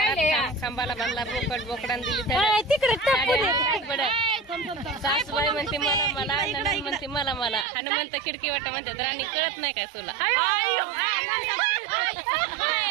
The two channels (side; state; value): left; drops out; at 7.7 s